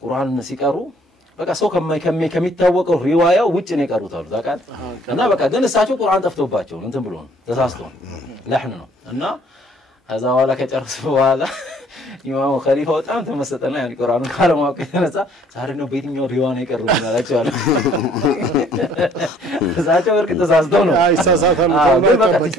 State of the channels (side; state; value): both; normal; correlation 0.59